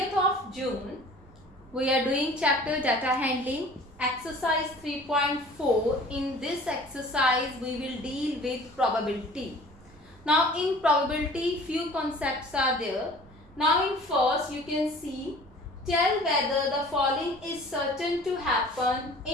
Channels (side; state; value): right; noise; rumble, 25 dB below the sound